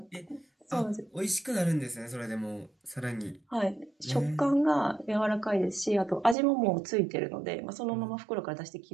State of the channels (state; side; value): drops out; left; at 6.4 s